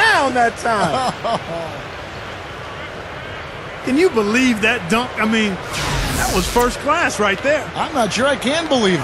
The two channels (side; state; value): both; identical; correlation 1.00